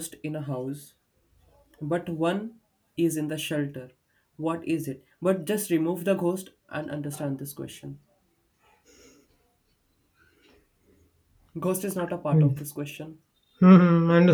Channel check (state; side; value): identical; both; correlation 1.00